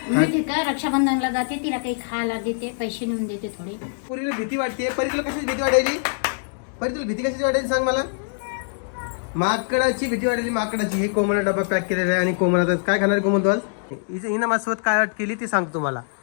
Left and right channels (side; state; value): right; silent; digital silence